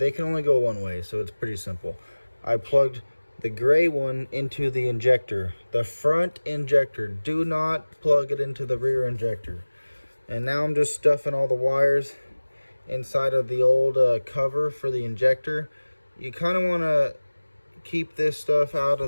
can only go one way, so it's pretty simple. I plugged the gray one into the injector, the front injector. Do not plug it into the rear injector. And now I'm just stuffing all the wires inside of the old cover for the injector. You kind of want to keep this stuff out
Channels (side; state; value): both; inverted; correlation -1.00